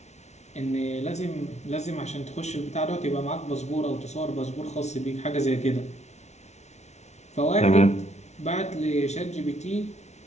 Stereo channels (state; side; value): late; right; 0.32 ms